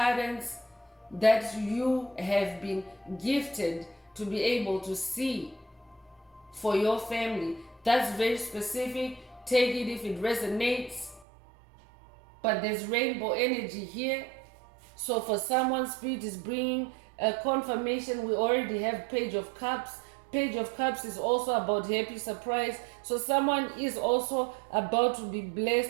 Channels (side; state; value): left; drops out; at 11.2 s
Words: that you have been gifted to be able to see for your family. That's very specific. Take it if it resonates. But there's rainbow energy here. So for someone, Spirit is bringing a confirmation. We already have Page of Cups. Page of Cups is also about happy surprise. So someone is also about to be blessed